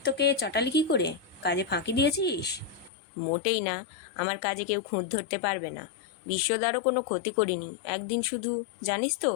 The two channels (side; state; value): right; drops out; at 2.9 s